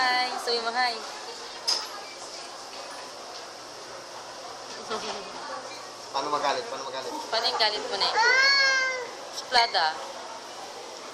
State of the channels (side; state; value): both; identical; correlation 1.00